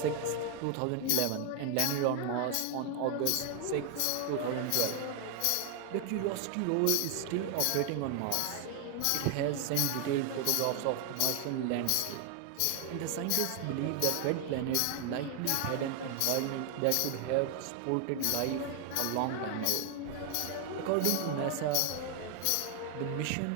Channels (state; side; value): different; both; correlation 0.00